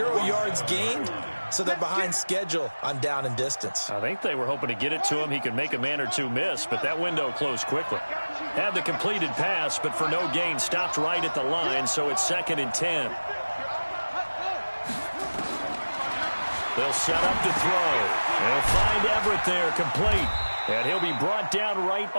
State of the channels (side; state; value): both; inverted; correlation -1.00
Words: yards gained, so they're behind schedule on down and distance. I think they were hoping to get it to him. He could make a man or two miss, but that window closed quickly. Had the completed pass, but for no gain, stopped right at the line, so it's 2nd and 10. They'll set up to throw. They'll find Everett there, complete. And he'll be brought down right